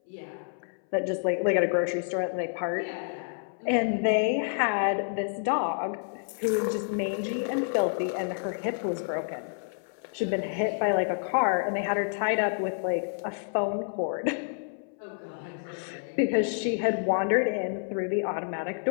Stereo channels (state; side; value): silent; right; 59 dB below the other